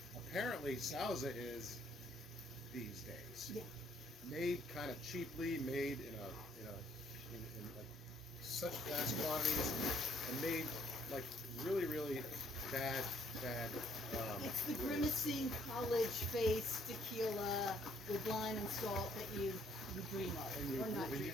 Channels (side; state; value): both; normal; correlation 0.65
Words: Apparently, Sauza is these days made kind of cheaply, made in like such vast quantities, and made like really, really bad. It's the grimacing college face tequila with lime and salt that you dream of, And you, or not and dream